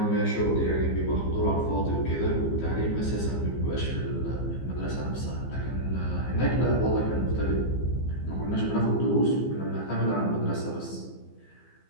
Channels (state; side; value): late; right; 15 ms